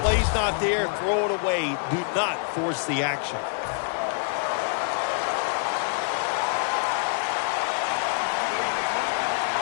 not there, throw it away. Do not force the action.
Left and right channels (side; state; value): right; silent; digital silence